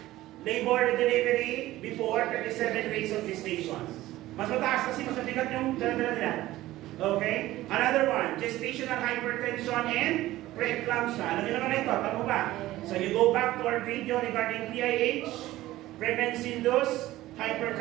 Labor and delivery before 37 days of gestation. Mas mataas kasi mas mabigat yung dala-dala nila. Okay? Another one, gestational hypertension and preeclampsia. Alam nyo naman ito, tama ba? So you go back to our video regarding PIH, pregnancy-induced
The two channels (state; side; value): quieter; left; 16.2 dB